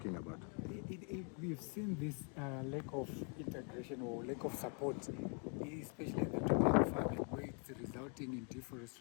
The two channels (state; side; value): quieter; right; 38.3 dB